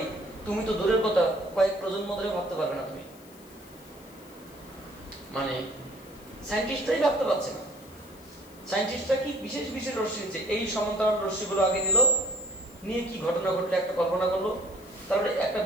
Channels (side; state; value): left; noise; hiss, 24 dB below the sound